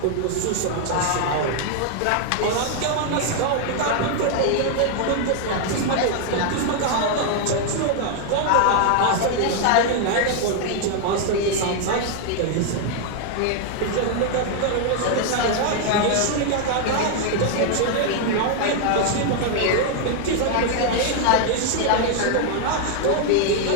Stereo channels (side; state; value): both; different; correlation 0.00